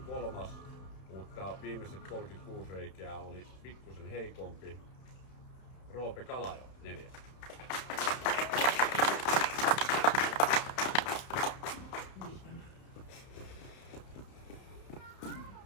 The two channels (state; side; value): late; right; 31 ms